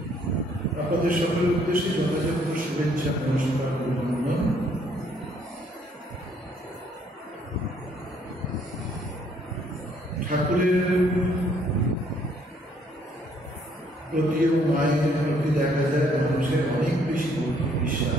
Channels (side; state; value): both; normal; correlation 0.65